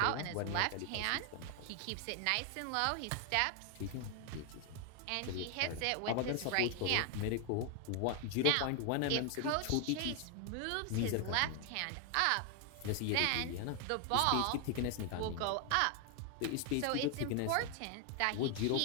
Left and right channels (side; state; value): both; different; correlation 0.00